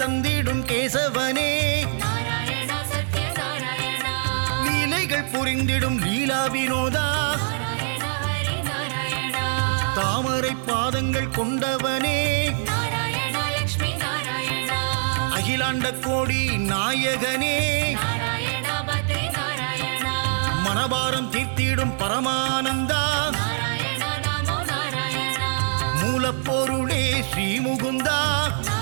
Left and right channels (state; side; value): silent; left; digital silence